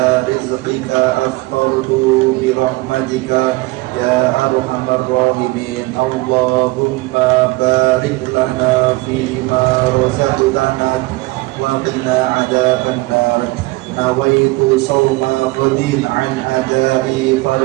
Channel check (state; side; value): quieter; left; 22.6 dB